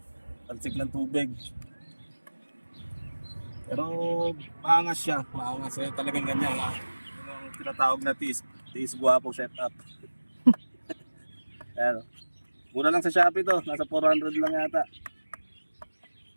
ng tubig. Pero maangas siya, maangas. Talagang ganyan. Yung tinatawag na tiis guwapo setup. Ayan. Mura lang sa Shopee to, nasa 400 lang yata.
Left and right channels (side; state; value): both; inverted; correlation -1.00